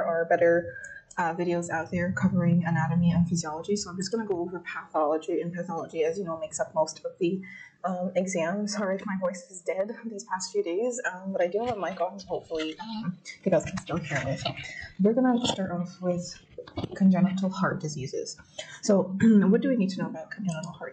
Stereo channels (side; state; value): both; identical; correlation 1.00